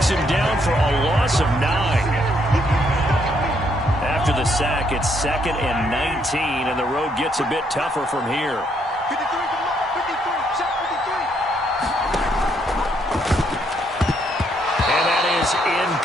him down for a loss of 9. After the sack, it's 2nd and 19, and the road gets a bit tougher from here. 53, check 53. And that is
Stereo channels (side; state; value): both; normal; correlation 0.72